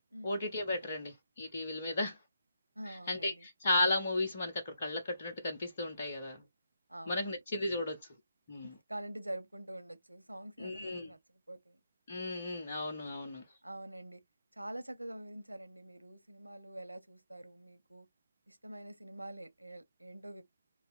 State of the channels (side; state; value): both; inverted; correlation -0.79